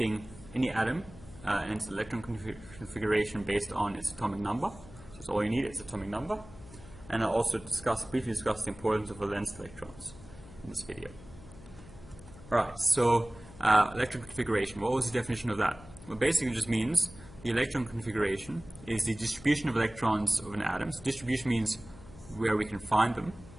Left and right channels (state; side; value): noise; left; hum, 19 dB below the sound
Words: atom and its electron configuration based on its atomic number. So that's all you need, its atomic number. And I'll also briefly discuss the importance of valence electrons in this video. Alright, so electron configuration, what was the definition of that? Well, basically it just means the electron configuration is the distribution of electrons of an atom. So distribution means where we can find them,